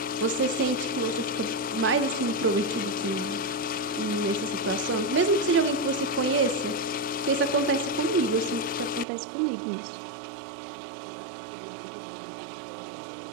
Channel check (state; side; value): drops out; left; at 9.1 s